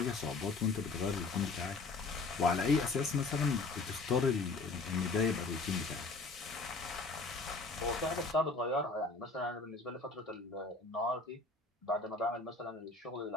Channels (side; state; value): right; quieter; 3.8 dB